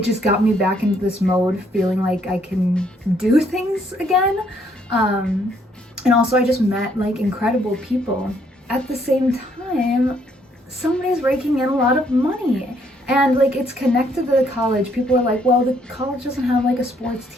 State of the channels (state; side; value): normal; both; correlation 0.68